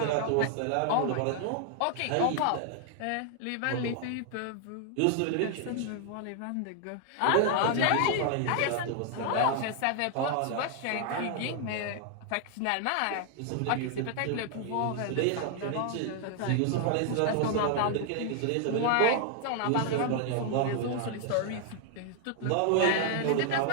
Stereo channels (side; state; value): both; different; correlation 0.00